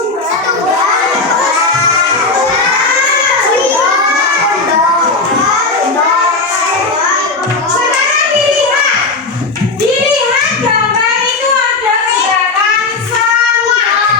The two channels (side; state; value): right; quieter; 3.6 dB